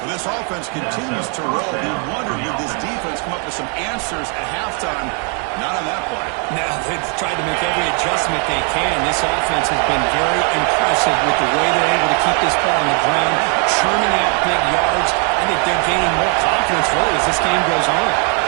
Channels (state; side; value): quieter; left; 38.7 dB